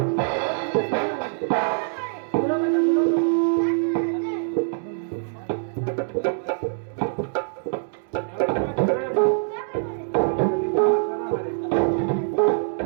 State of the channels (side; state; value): left; silent; digital silence